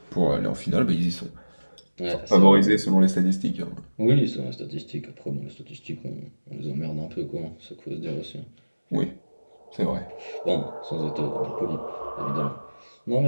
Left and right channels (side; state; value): both; inverted; correlation -1.00